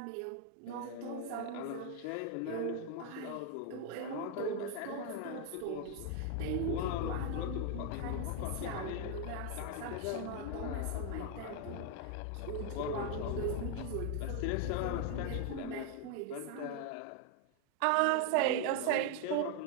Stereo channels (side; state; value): both; different; correlation 0.01